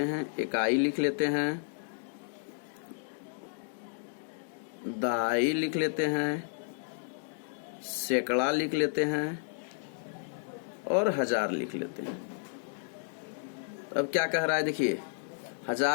हैं, इकाई लिख लेते हैं, दाई लिख लेते हैं, सैकड़ा लिख लेते हैं और हजार लिख लेते हैं। अब क्या कह रहा है, देखिए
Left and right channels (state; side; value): silent; right; digital silence